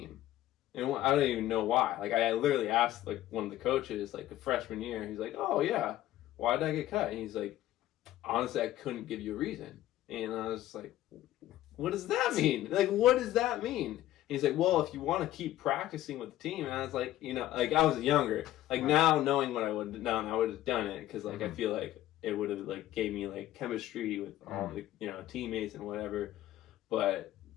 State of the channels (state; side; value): quieter; right; 14.2 dB